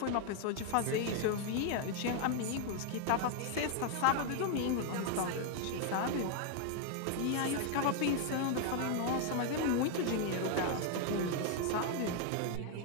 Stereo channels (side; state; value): both; different; correlation 0.00